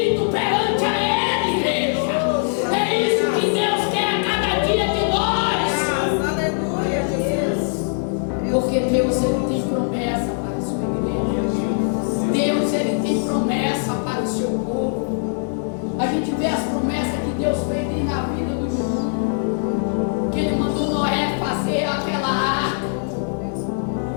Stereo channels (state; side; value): silent; right; digital silence